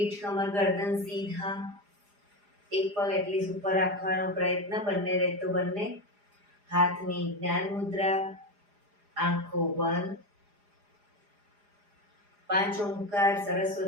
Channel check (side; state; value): left; late; 4.9 ms